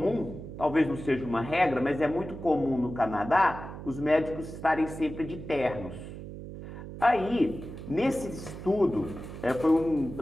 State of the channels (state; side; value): noise; right; hum, 11 dB below the sound